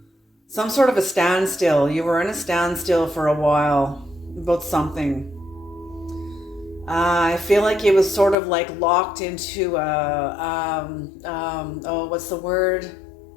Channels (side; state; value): right; drops out; at 8.3 s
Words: Some sort of a standstill. You were in a standstill for a while about something. I feel like it was sort of like locked into what's the word?